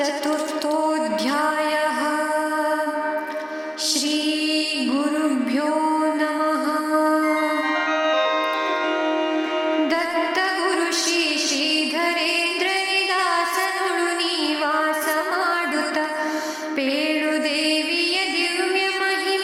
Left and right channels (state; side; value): identical; both; correlation 1.00